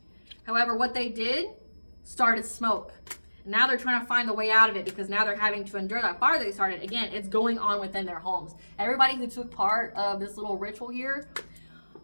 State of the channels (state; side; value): inverted; both; correlation -1.00